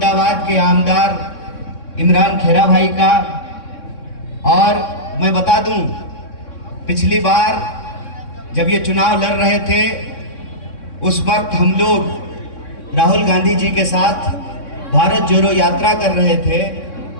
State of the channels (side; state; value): right; late; 3.6 ms